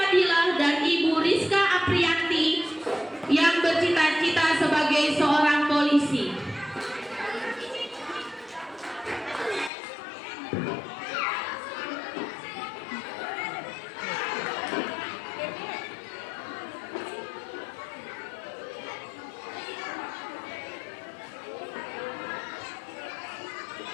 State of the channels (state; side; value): drops out; right; at 9.7 s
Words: dan Ibu Rizka Aprianti yang bercita-cita sebagai seorang polisi.